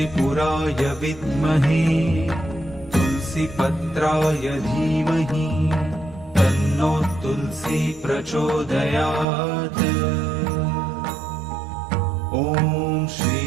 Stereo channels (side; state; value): left; drops out; at 9.2 s